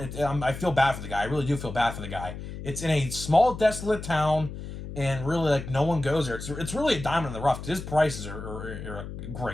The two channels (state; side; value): noise; left; hum, 9 dB below the sound